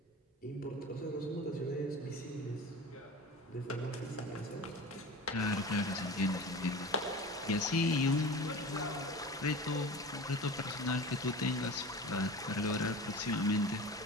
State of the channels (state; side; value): normal; both; correlation 0.34